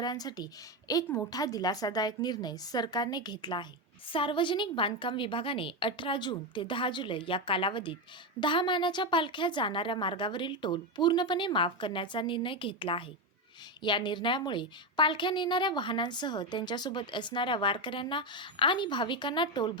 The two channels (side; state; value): both; normal; correlation 0.10